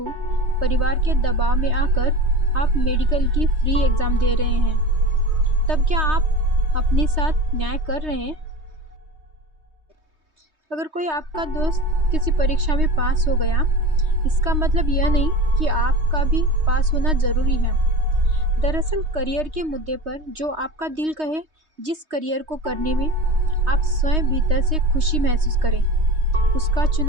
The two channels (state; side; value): late; left; 3.2 ms